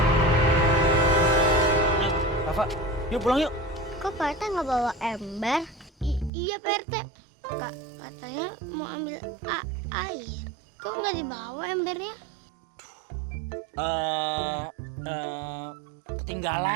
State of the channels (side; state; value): left; drops out; at 6.3 s